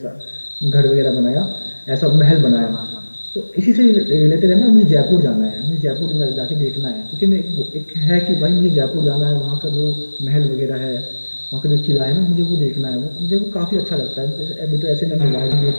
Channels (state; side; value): inverted; both; correlation -1.00